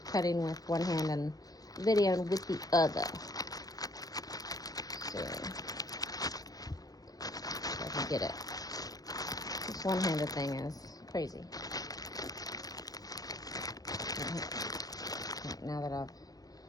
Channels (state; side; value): late; right; 0.18 ms